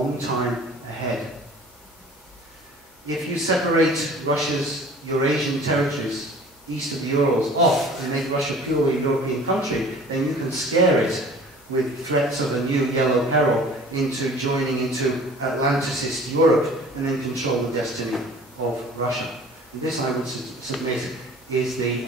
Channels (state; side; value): normal; both; correlation 0.47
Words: time ahead. If you separate Russia's Eurasian territories east of the Urals off and make Russia purely a European country, then you can scare it with threats of a new yellow peril into joining into Atlanticist Europe and then control the destiny of Russia. And this, I would submit, is the